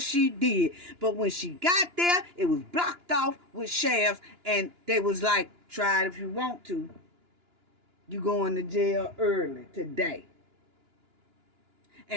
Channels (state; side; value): late; left; 2.9 ms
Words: she did. But when she got there, it was blocked off with sheriffs, and they was like, try it if you want to. You going to jail early today.